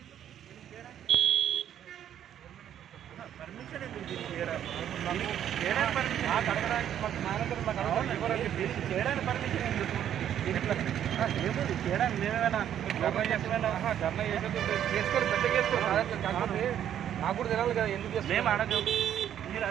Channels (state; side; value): quieter; left; 10.2 dB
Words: పర్మిషన్ ఎందుకు చేయడానికి పర్మిషన్ ఎందుకు? ఏముంది చేయడానికి మేమేమైనా ధర్నా చేసుకొని పెద్ద చేసుకోవాలి. నాకు కూడా తెలియాలి కదా ఎందుకు మేము అడగం. మీరు